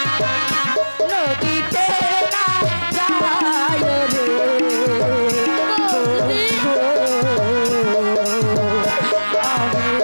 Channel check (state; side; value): inverted; both; correlation -1.00